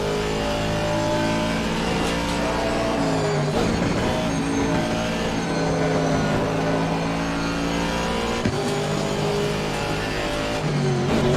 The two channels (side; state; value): both; identical; correlation 1.00